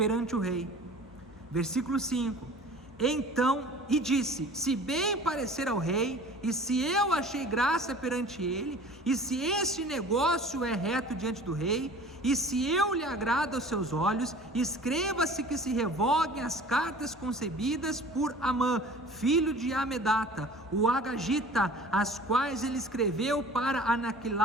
o rei. Versículo 5: então, e disse: se bem parecer ao rei, e se eu achei graça perante ele, e se este negócio é reto diante do rei, e se eu lhe agrado aos seus olhos, escreva-se que se revoguem as cartas concebidas por Amã, filho de Amedata, o Agagita, as quais ele escreveu para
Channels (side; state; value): both; normal; correlation 0.44